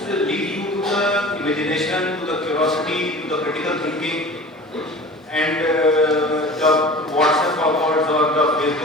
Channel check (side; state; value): both; normal; correlation 0.39